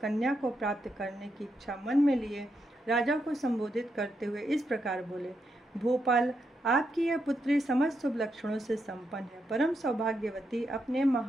को प्राप्त करने की इच्छा मन में लिए राजा को संबोधित करते हुए इस प्रकार बोले, भोपाल, आपकी यह पुत्री समस्त शुभ लक्षणों से संपन्न है, परम सौभाग्यवती, अपने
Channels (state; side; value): normal; both; correlation 0.82